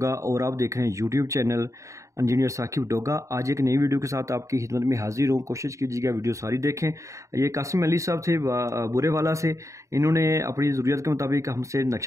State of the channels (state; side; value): late; left; 0.15 ms